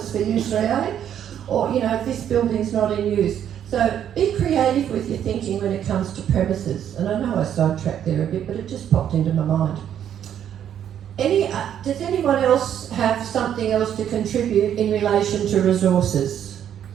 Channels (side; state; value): left; quieter; 9.7 dB